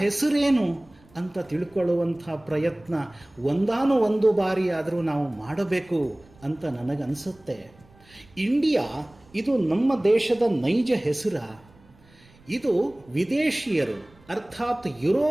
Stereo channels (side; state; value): right; noise; rumble, 28 dB below the sound